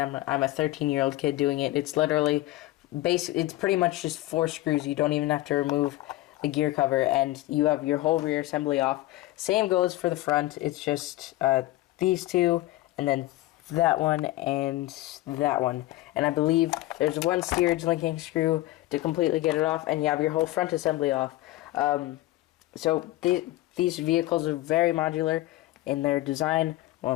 I'm a 13-year-old kid doing it. It's literally it's pretty much just 4 screws. You don't even have to remove the gear cover, and you have your whole rear assembly off. Same goes for the front. It's just these 2, and then that one and that one, and I believe there's one steerage linking screw to completely get it off, and you have your whole front assembly off. So these vehicles are very modular in their design.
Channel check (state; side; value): quieter; right; 17.3 dB